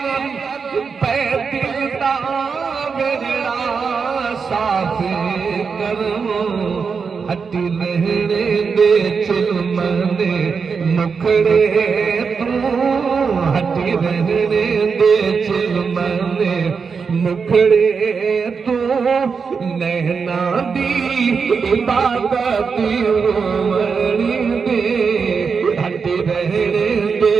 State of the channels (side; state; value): left; quieter; 5.5 dB